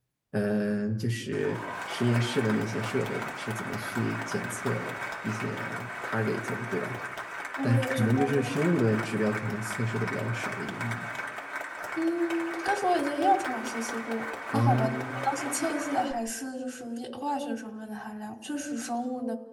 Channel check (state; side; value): identical; both; correlation 1.00